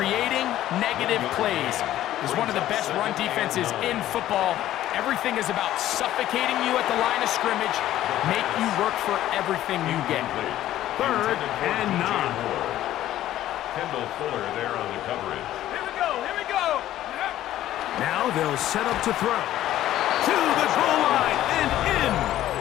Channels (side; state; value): right; quieter; 13.4 dB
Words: negative plays. It's one of the best run defenses in football. Everything is about suffocating you at the line of scrimmage, make you work for everything you get. 3rd and 9. Kendall Fuller there on the coverage. Here we go. Here we go. Now they'll set up to throw. To the goal line and in.